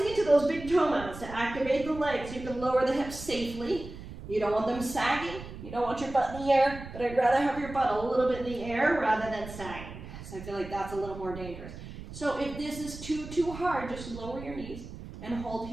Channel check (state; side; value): noise; right; rumble, 12 dB below the sound